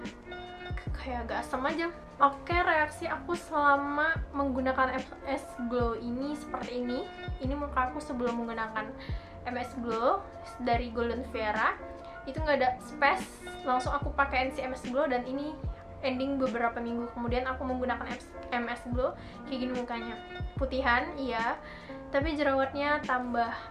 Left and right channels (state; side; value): identical; both; correlation 1.00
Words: kayak agak asam aja. Oke, reaksi aku selama menggunakan MS Glow ini seperti ini. Ini muka aku sebelum menggunakan MS Glow dari Golden Vera. Itu nggak ada space, langsung aku pakai NC MS Glow, dan ini ending beberapa minggu kemudian aku menggunakan MS Glow, kayak gini mukanya. Putihan, iya, tapi jerawatnya tambah